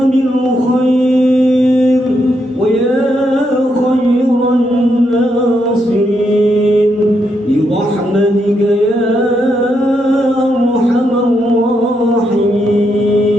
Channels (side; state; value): both; normal; correlation 0.80